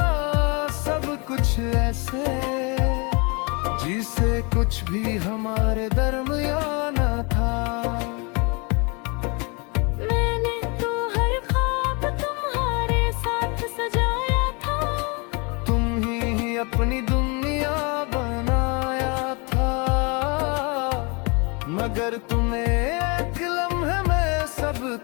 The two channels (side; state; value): right; quieter; 30.7 dB